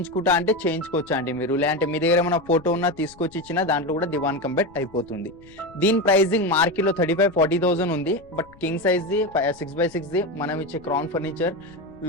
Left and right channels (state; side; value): noise; left; rumble, 25 dB below the sound